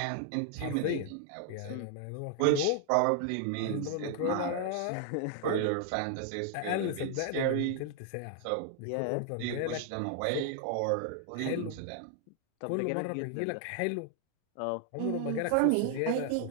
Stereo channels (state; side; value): different; both; correlation 0.00